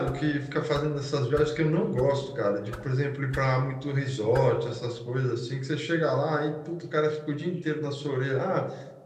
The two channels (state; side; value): identical; both; correlation 1.00